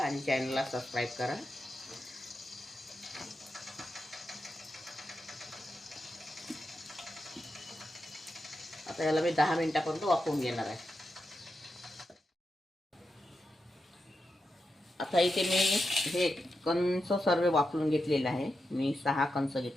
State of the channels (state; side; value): normal; both; correlation 0.88